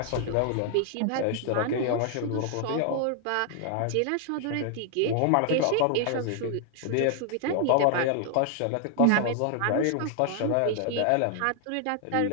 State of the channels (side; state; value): both; different; correlation 0.00